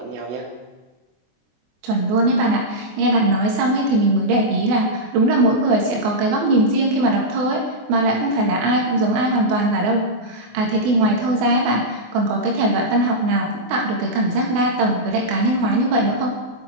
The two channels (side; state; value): left; late; 24 ms